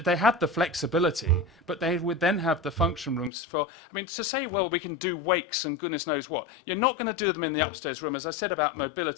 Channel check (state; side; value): drops out; right; at 3.3 s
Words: they had the flexibility, but they would then have the function rooms for, I mean, to say, well, we can do wakes and goodness knows what, you're not going to do them in the upstairs room. As I said about